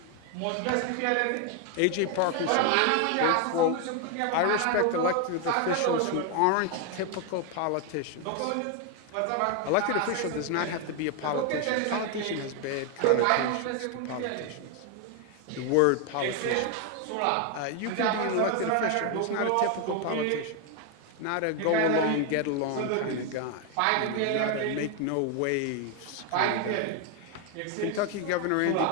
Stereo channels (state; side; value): different; both; correlation 0.01